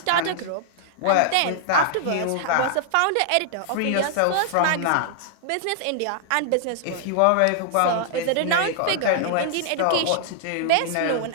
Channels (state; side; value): different; both; correlation -0.01